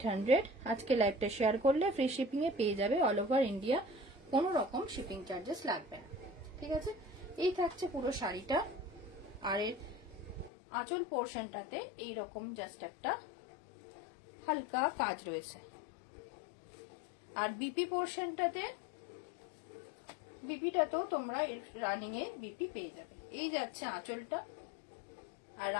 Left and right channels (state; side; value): drops out; right; at 10.5 s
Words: আজকে লাইভটা শেয়ার করলে ফ্রি শিপিং এ পেয়ে যাবে অল ওভার ইন্ডিয়া, কোনো রকম শিপিং চার্জেস লাগবে না। ঠিক আছে, এই থাকছে পুরো শাড়িটা। আর এর আঁচল পোর্শনটাতে এইরকম জাস্ট একটা হালকা কাজ রয়েছে। আর বিপি পোর্শনটাতে, বিপিটাতেও তোমরা রানিং এ বিপি পেয়ে যাবে। এই যাচ্ছে আঁচলটা, আর